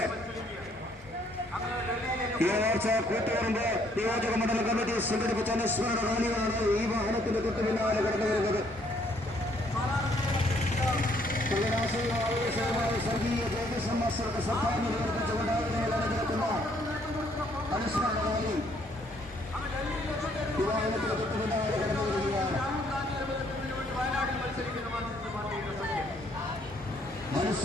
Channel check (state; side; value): normal; both; correlation 0.67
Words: ഈ ആഴ്ച കൂത്തുപറമ്പ് നിയോജക മണ്ഡല കമ്മിറ്റി സംഘടിപ്പിച്ച അനുസ്മരണ റാലിയാണ് ഈ വാഹനത്തിന്റെ തൊട്ട് പിന്നാലെ കടന്നു വരുന്നത്. സ്വർഗീയ ജയകൃഷ്ണൻ മാസ്റ്ററുടെ സംഭാവന പ്രകടിപ്പിച്ചുകൊണ്ട് നടക്കുന്ന അനുസ്മരണ റാലി ഈ വാഹനത്തിന്റെ തൊട്ട് പിന്നാലെ കടന്നു വരികയാണ്.